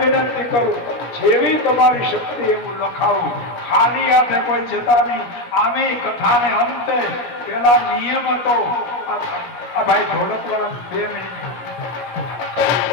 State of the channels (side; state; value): right; late; 16 ms